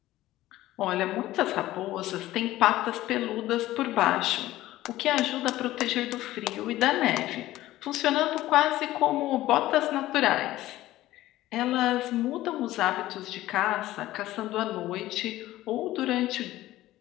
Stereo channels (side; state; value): right; quieter; 15.7 dB